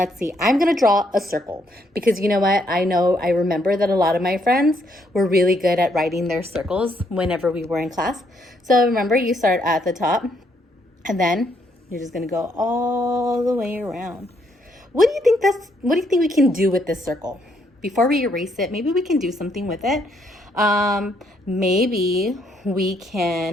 see, I'm gonna draw a circle because you know what? I remember that a lot of my friends were really good at writing their circles whenever we were in class. So remember, you start at the top and then you're just gonna go all the way around. What do you think we can do with this circle? Before we erase it, maybe we can do something with it. Maybe we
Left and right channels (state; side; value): normal; both; correlation 0.72